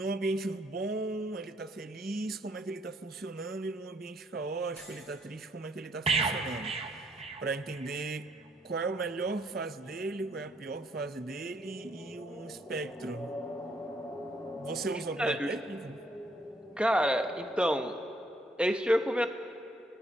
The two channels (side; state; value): both; normal; correlation 0.69